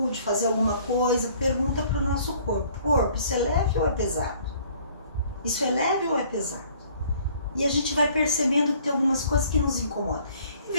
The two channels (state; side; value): inverted; both; correlation -0.57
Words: fazer alguma coisa, pergunta para o nosso corpo. Corpo, isso é leve ou é pesado? Isso é leve ou é pesado? E a gente vai percebendo que tem algumas coisas que nos incomodam.